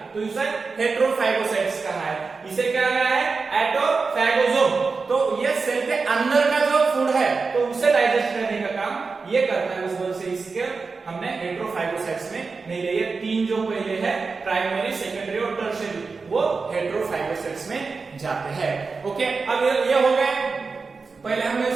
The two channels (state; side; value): quieter; left; 4.5 dB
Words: तो इसे हेटेरोफैगोसाइट्स कहा है। इसे क्या कहा है, एटोफैगोसोम। तो ये सेल के अंदर का जो फूड है तो उसे डाइजेस्ट करने का काम ये करता है, उस वजह से इसके हमने हेटेरोफैगोसाइट्स में नहीं लिए। 3 जो पहले है, प्राइमरी, सेकेंडरी और टर्शियरी, वो हेटेरोफैगोसाइट्स में जाते हैं। ओके, अब ये हो गए, पहले हमने